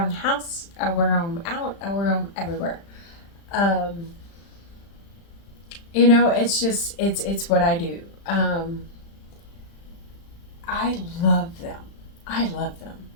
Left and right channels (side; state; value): right; late; 35 ms